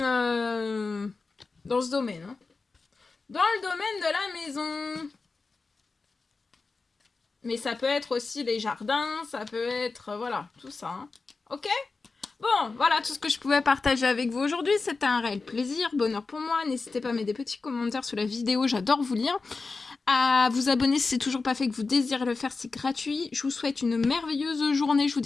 dans ce domaine. Hein. Dans le domaine de la maison. Mais ça peut être aussi les jardins, ça peut être, voilà, tout ça. Hein. Ok ? Bon, voilà tout ce que je pouvais partager avec vous aujourd'hui. C'était un réel plaisir, bonheur pour moi. N'hésitez pas à mettre des petits commentaires sous la vidéo, j'adore vous lire. À vous abonner si c'est toujours pas fait, que vous désirez le faire, c'est gratuit. Je vous souhaite une merveilleuse journée. Je vous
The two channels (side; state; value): right; quieter; 4.1 dB